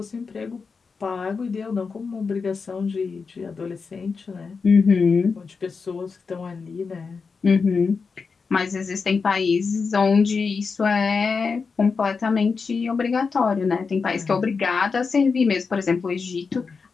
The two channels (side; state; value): right; quieter; 5.0 dB